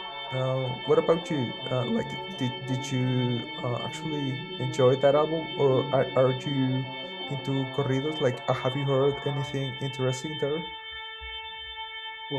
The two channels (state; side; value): identical; both; correlation 1.00